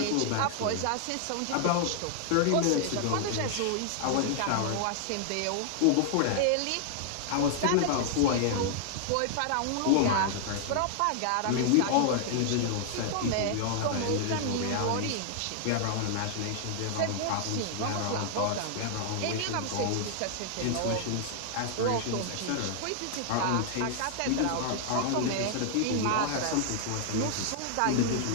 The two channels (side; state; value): both; different; correlation -0.01